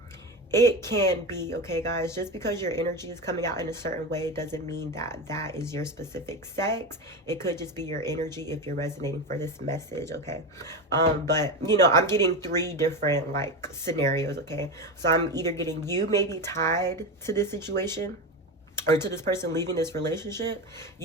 It can be, okay, guys? Just because your energy is coming out in a certain way doesn't mean that that is your specific sex. It could just be your energy if you're resonating for this message, okay? But, you know, I'm getting 3 different, like, scenarios, okay? So I'm either getting you may be tied to this situation, or to this person leaving this relationship.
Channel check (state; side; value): normal; both; correlation 0.20